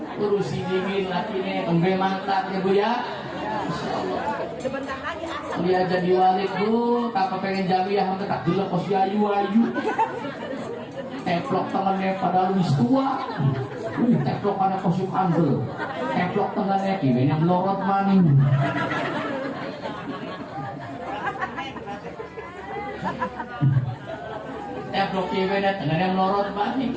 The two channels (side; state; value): both; identical; correlation 1.00